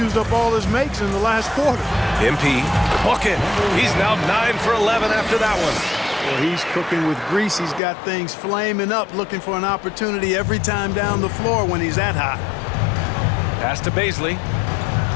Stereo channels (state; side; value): drops out; right; at 7.8 s